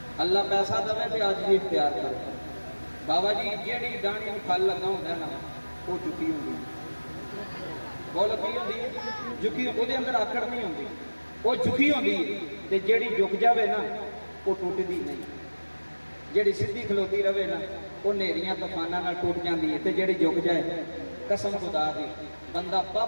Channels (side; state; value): both; inverted; correlation -1.00